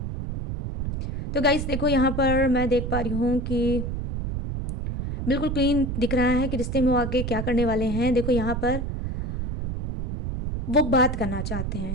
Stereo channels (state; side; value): noise; right; rumble, 3 dB below the sound